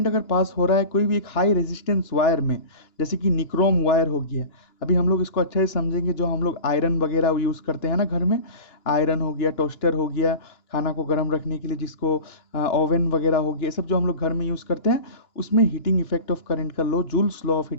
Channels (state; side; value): late; right; 2.9 ms